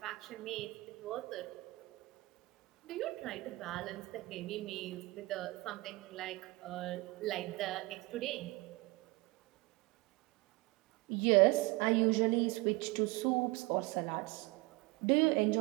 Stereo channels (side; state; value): left; quieter; 22.6 dB